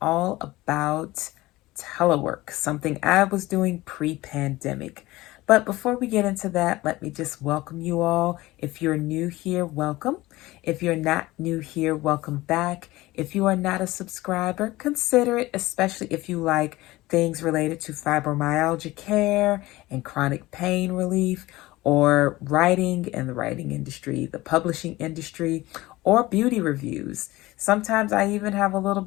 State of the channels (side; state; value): right; quieter; 18.8 dB